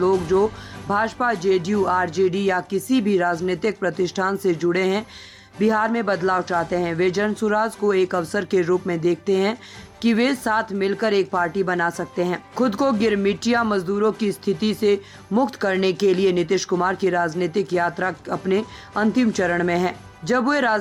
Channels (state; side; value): identical; both; correlation 1.00